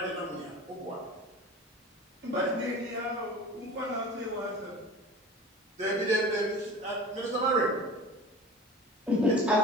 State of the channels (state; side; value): normal; both; correlation 0.37